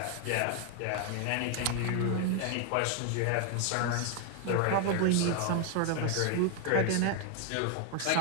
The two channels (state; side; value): different; both; correlation 0.01